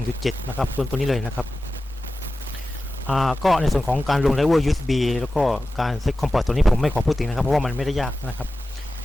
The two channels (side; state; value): both; normal; correlation 0.94